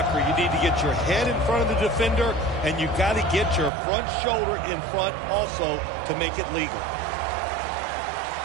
you need to get your head in front of the defender, and you got to get your front shoulder in front also to make it legal.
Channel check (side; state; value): left; drops out; at 3.7 s